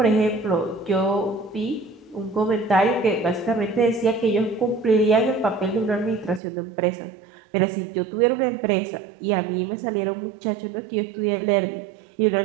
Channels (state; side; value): drops out; left; at 6.4 s